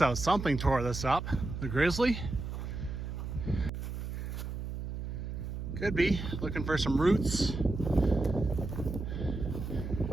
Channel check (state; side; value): noise; right; hum, 6 dB below the sound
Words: out. Something tore this up. The grizzly. Could be looking for some roots.